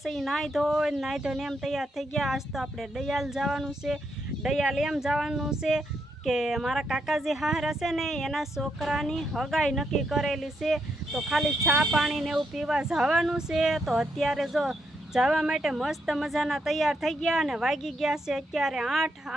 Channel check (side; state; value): both; normal; correlation 0.79